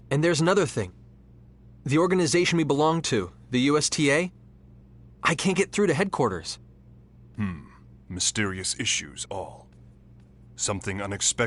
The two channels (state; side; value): identical; both; correlation 1.00